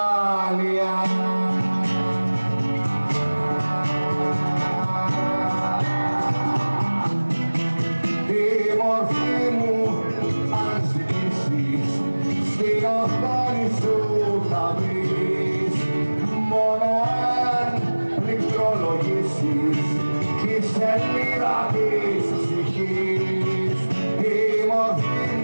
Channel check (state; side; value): inverted; both; correlation -1.00